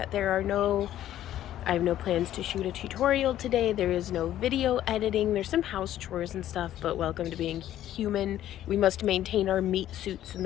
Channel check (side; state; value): right; quieter; 12.4 dB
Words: I have no plans to shoot a tutorial today. There is no video editing. There's some house chores and stuff, but welcome to being human. We must maintain our meat suits in